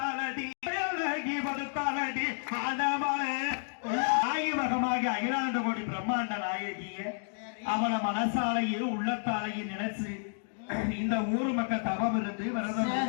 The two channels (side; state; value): right; silent; digital silence